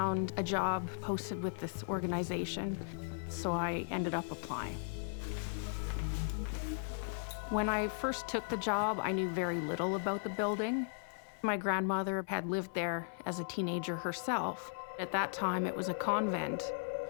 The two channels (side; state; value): right; silent; 53 dB below the other